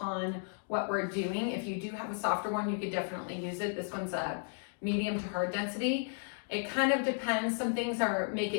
what we're doing, if you do have a softer one, you could definitely use it. This one's a medium to hard density. It kind of depends. Some things make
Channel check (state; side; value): silent; right; 55 dB below the other